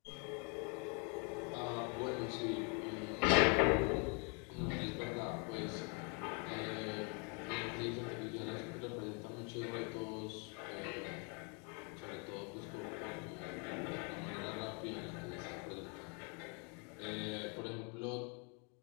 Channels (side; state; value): right; quieter; 36.0 dB